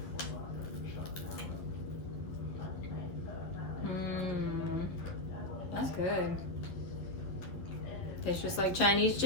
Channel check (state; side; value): late; right; 11 ms